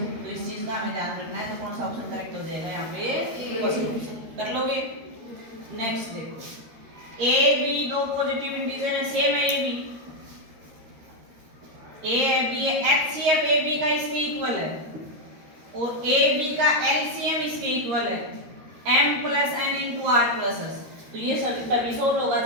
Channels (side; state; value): left; late; 13 ms